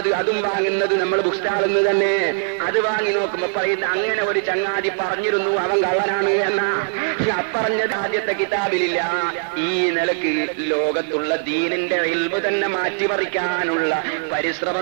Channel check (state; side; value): silent; left; 65 dB below the other